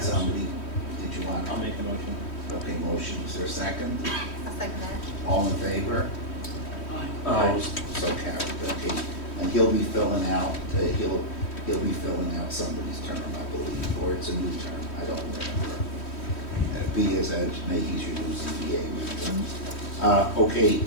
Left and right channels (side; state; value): right; late; 3.1 ms